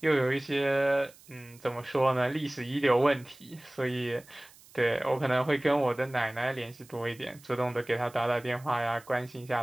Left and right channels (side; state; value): right; noise; hiss, 24 dB below the sound